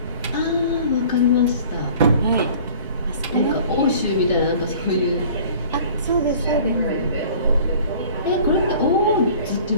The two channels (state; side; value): inverted; both; correlation -0.48